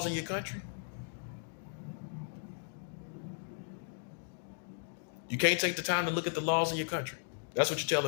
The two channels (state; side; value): silent; right; digital silence